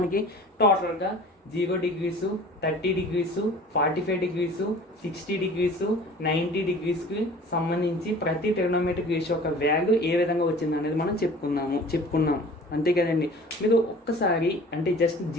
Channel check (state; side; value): normal; both; correlation 0.45